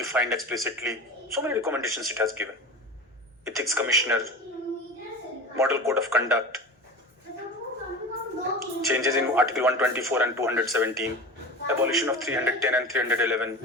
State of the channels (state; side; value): normal; both; correlation 0.31